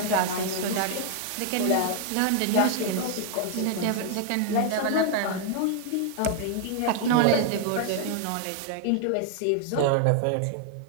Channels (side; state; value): both; different; correlation 0.00